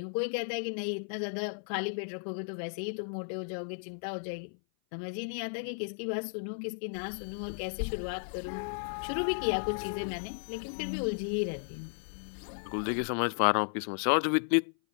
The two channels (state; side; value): silent; right; 55 dB below the other